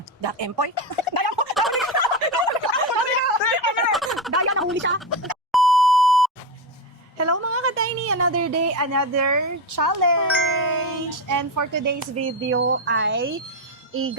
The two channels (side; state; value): both; normal; correlation 0.14